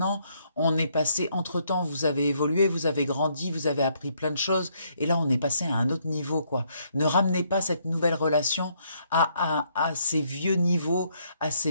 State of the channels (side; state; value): both; inverted; correlation -0.71